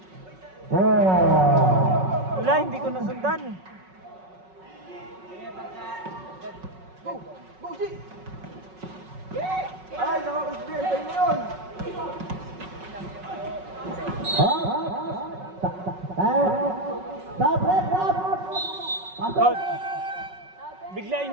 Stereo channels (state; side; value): late; left; 5.4 ms